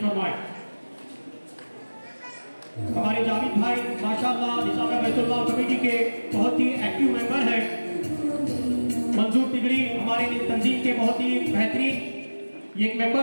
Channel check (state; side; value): inverted; both; correlation -1.00